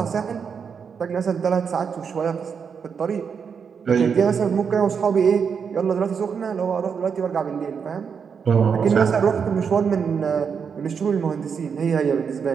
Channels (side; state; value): left; quieter; 6.5 dB